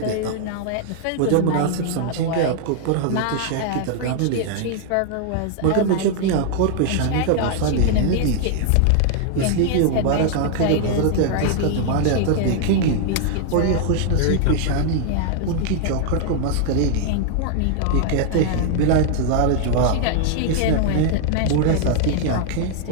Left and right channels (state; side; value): different; both; correlation 0.00